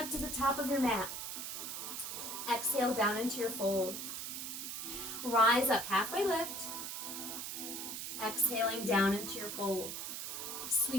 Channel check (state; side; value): noise; right; hiss, 5 dB below the sound